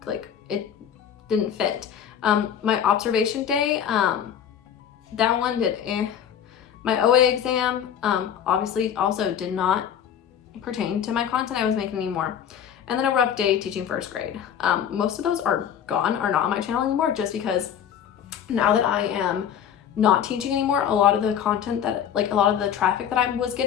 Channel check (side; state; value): right; quieter; 8.9 dB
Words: like, it didn't fit. My observation day, that one did My OA exam, obviously also did not pertain to my content I was making anymore. And then a rough day teaching first grade. Most of those are gone, are not on my channel anymore, just because now that I am not teaching anymore, a lot of the content that, like a lot of the traffic that I was